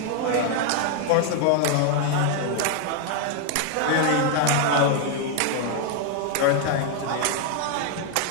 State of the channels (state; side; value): different; both; correlation 0.00